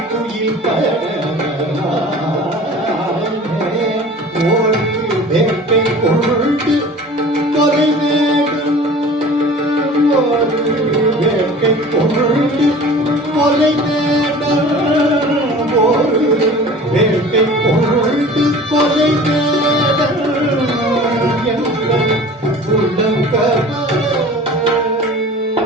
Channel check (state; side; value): normal; both; correlation 0.42